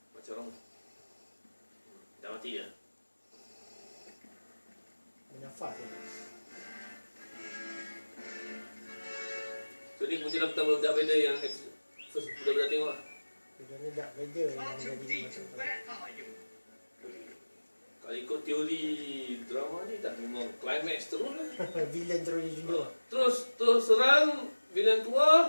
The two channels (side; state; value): both; inverted; correlation -1.00